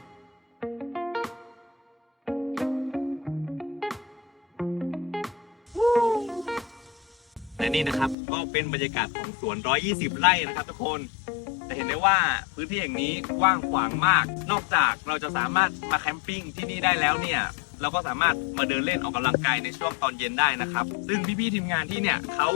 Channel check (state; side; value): drops out; right; at 8.2 s